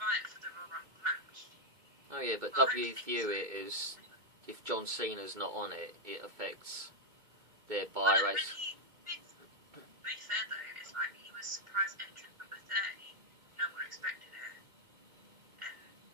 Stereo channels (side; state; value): left; late; 2.2 ms